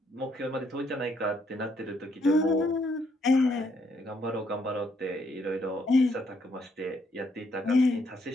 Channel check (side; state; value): both; normal; correlation 0.72